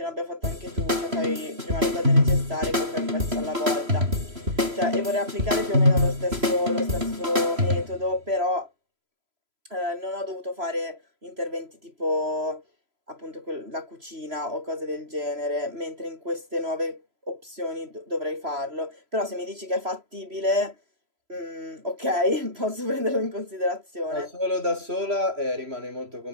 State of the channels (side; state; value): left; late; 3.0 ms